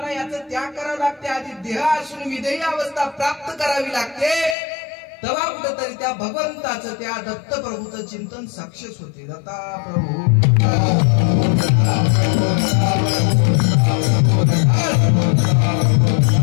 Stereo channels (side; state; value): right; drops out; at 4.5 s